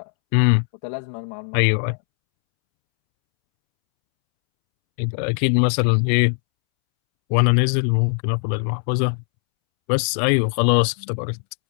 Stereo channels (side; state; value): right; silent; 66 dB below the other